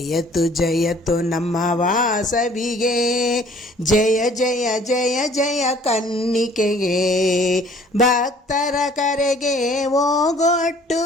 ಜಯತು ನಮ್ಮ ವಾಸವಿಗೆ, ಜಯ ಜಯ ಜಯ ಜಯ ಕನ್ನಿಕೆಗೆ. ಭಕ್ತರ ಕರೆಗೆ ಓಗೊಟ್ಟು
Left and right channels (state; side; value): normal; both; correlation 0.55